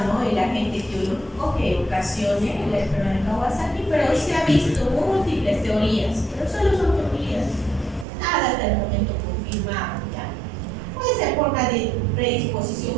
¿no?, el agente etiológico que ocasione la enfermedad de Kawasaki, pero se ha visto múltiples teorías, pero solo son teorías, nada hasta el momento confirmado, ¿ya? Puede ser por una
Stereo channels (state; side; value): drops out; left; at 8.1 s